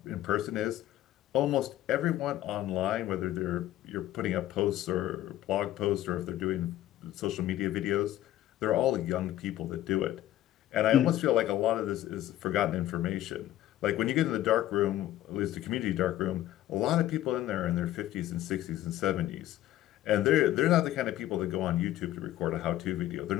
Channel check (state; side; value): quieter; right; 13.9 dB